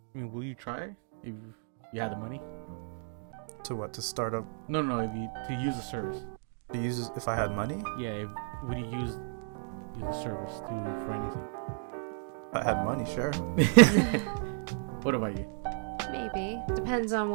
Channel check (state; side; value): silent; left; digital silence